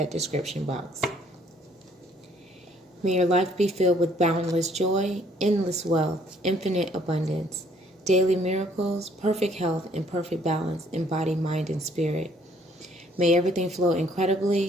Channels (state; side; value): normal; both; correlation 0.62